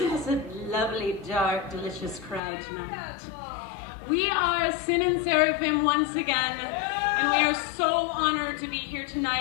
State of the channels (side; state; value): right; drops out; at 2.4 s